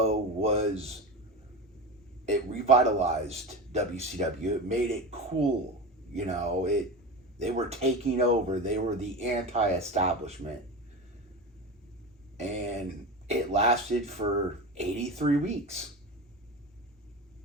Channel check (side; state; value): both; normal; correlation 0.25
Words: it revitalized WCW. It made it cool. They were taking over. They were the anti-establishment. And it lasted for 83 weeks.